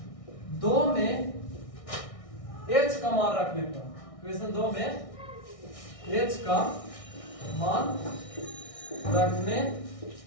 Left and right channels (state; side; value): late; right; 1.6 ms